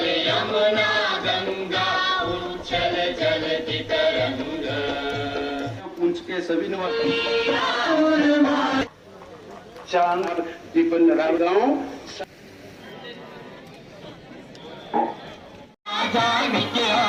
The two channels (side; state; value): both; identical; correlation 1.00